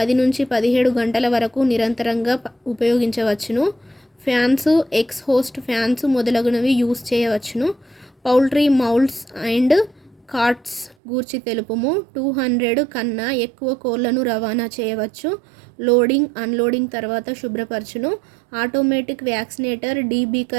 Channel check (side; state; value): left; drops out; at 11.0 s